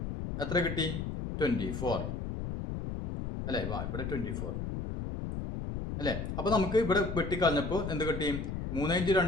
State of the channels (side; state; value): left; noise; rumble, 4 dB below the sound